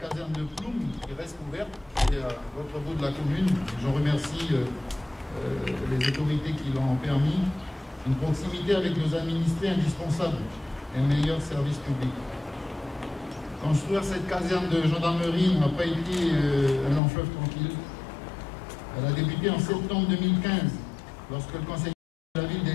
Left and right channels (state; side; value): drops out; right; at 17.0 s